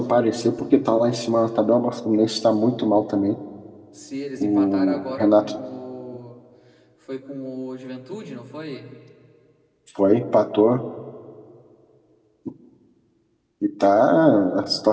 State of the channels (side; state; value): both; identical; correlation 1.00